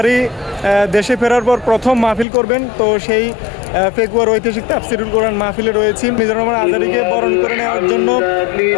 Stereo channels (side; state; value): right; drops out; at 2.2 s